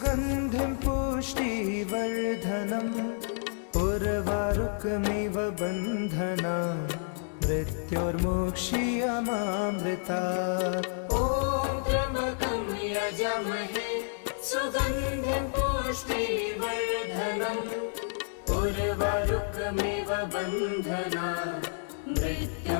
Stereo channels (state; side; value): silent; right; 58 dB below the other